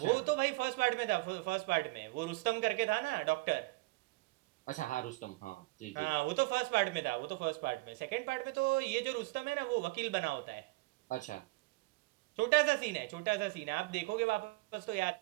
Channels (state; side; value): quieter; left; 23.2 dB